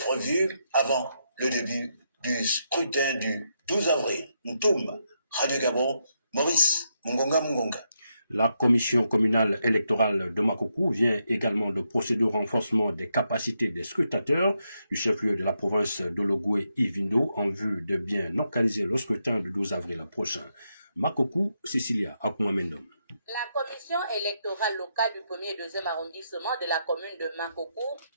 avant le début du scrutin du 12 avril. Ntoum, Radio Gabon, Maurice Mungonga. La commission communale électorale de Makoko vient également de procéder au renforcement des capacités des scrutateurs du chef-lieu de la province de Logoué Ivindo en vue de bien organiser le scrutin du 12 avril prochain. Makoko, Cecilia Akumamendom. La commission électorale locale du 1er et 2e arrondissement de la commune de Makoko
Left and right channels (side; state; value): both; inverted; correlation -0.81